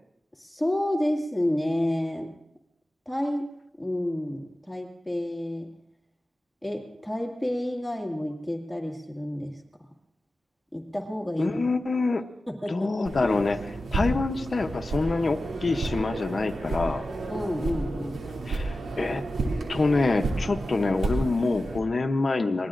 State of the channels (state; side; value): normal; both; correlation 0.94